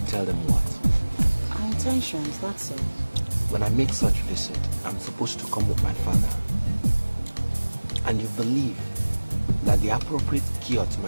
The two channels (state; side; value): inverted; both; correlation -1.00